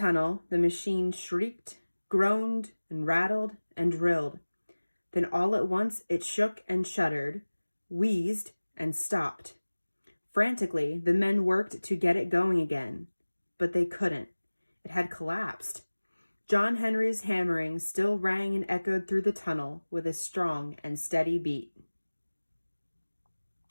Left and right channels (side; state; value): both; inverted; correlation -1.00